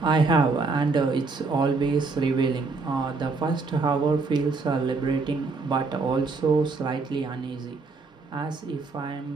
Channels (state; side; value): quieter; left; 4.1 dB